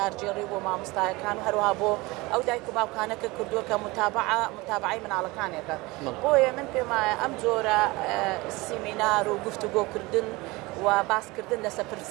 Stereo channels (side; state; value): left; quieter; 22.7 dB